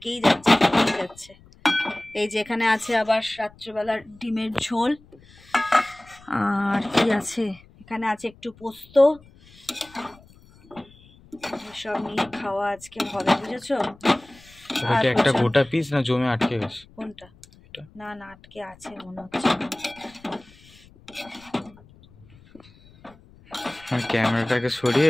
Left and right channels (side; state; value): left; noise; rumble, 26 dB below the sound